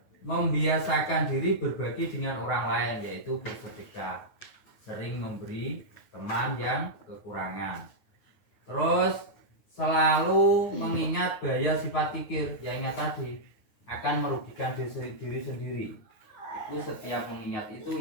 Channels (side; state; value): right; late; 9.4 ms